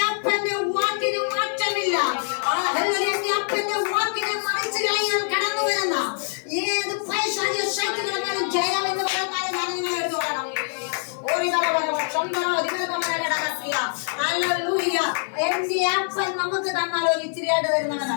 അപ്പന്റെ വാക്കിന് മാറ്റമില്ല. എന്റെ അപ്പന്റെ വാക്കിനെ മറിച്ച് കളയാൻ കടന്നു വരുന്ന ഏത് പൈശാചിക ശക്തികളെക്കാളും ജയം എന്ന് പറയുന്ന ഞാൻ നിങ്ങളെ എടുത്തു പറയണം. എന്റെ അപ്പൻ നമുക്ക് തന്നാൽ ഒരു ഇച്ചിരിയായിട്ട്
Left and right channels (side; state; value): right; silent; 56 dB below the other